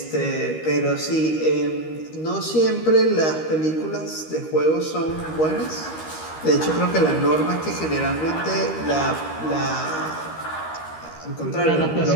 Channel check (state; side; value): late; right; 13 ms